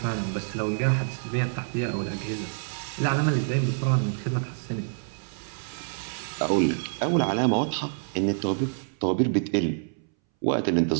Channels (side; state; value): left; silent; 60 dB below the other